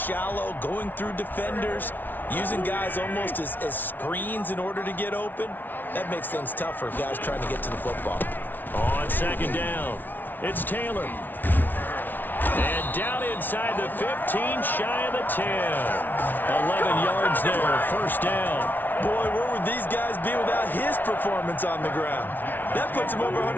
going through defenders, using guys almost as screens in order to get open, that makes things tough for guys trying to get to the football. On 2nd down, it's Taylor. And down inside the 15, shy of the 10. 11 yards there, first down. Boy, where would these guys be without his performance on the ground? That puts him over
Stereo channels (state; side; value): late; right; 0.087 ms